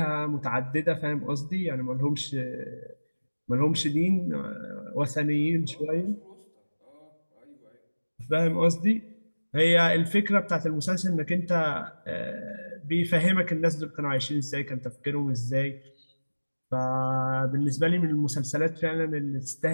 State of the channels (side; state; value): both; inverted; correlation -1.00